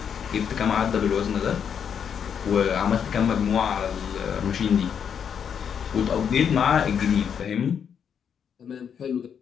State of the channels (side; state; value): right; quieter; 7.7 dB